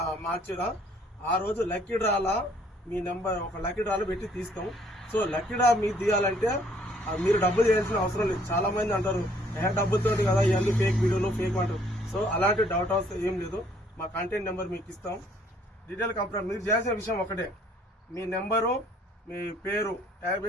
మార్చిలో ఆ రోజు లక్కీ డ్రాలా మీ నెంబర్ ఒక లక్కీ డ్రాలో పెట్టి తీస్తాం. సో లక్కీ డ్రా మీరు తీయాలంటే మీరు డబ్బులు చేయాల్సిన అవసరం లేదు. చాలా మంది అంటారు డబ్బులతో కదా ఇవన్నీ ఫేక్ వీడియోలు ఫేక్ అంటారు. సో అలాంటి డౌట్ అవసరం ఏం లేదు. మా కాంటాక్ట్ నెంబర్ మీకు ఇస్తాం. డీటెయిల్ కంప్లైంట్ మీరు చేయాల్సిన విషయం ఒకటే, మీ నెంబరు మీ పేరు ట్యాగ్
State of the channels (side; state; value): both; normal; correlation 0.62